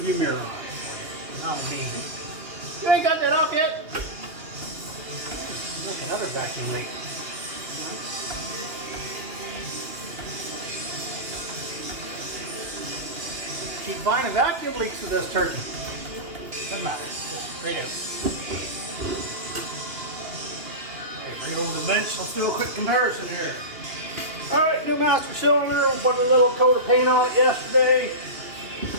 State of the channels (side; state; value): left; late; 2.8 ms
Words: mirror on. Not me. You ain't got that off yet? Look, another vacuum leak. Keep finding vacuum leaks with this turkey. Doesn't matter. Just straight out. Okay, right over the bench. Let's do a quick comparison here. Alright, new master cylinder. We put a little coat of paint on it yesterday.